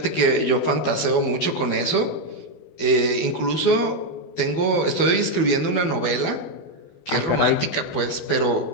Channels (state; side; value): late; right; 12 ms